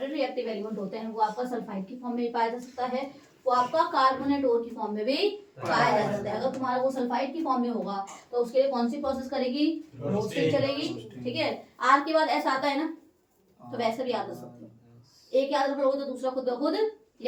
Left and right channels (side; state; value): both; identical; correlation 1.00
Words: रिएक्टिव एलिमेंट होते हैं वो आपका सल्फाइड की फॉर्म में भी पाया जा सकता है, वो आपका कार्बोनेट ओर की फॉर्म में भी पाया जा सकता है। अगर तुम्हारा वो सल्फाइड की फॉर्म में होगा तो उसके लिए कौन सी प्रोसेस करेगी, रोस्टिंग चलेगी। ठीक है, आर के बाद एस आता है ना, तो वैसे भी याद रख सकते हो, एक याद रखोगे तो दूसरा खुद ब खुद